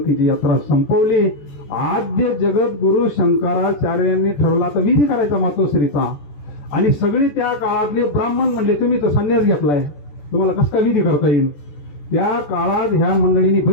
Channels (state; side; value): late; right; 14 ms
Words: यात्रा संपवली. आद्य जगत गुरु शंकराचार्यांनी ठरवला तर विधी करायचा मातोश्रीचा. आणि सगळे त्या काळातले ब्राह्मण म्हणले, तुम्ही तर संन्यास घेतलाय, तुम्हाला कसं काय विधी करता येईल? त्या काळात ह्या मंडळींनी